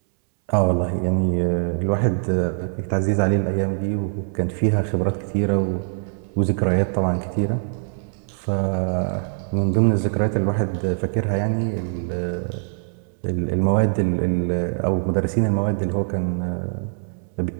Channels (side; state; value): left; silent; 64 dB below the other